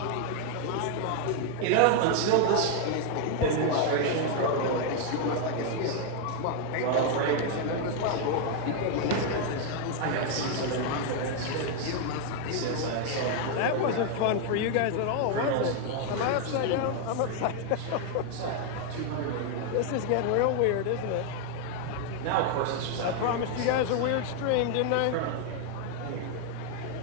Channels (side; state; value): both; different; correlation 0.00